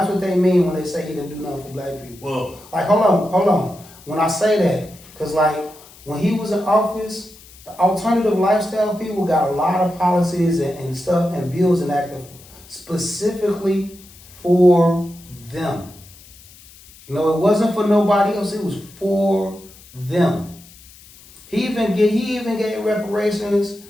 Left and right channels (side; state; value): left; noise; hiss, 22 dB below the sound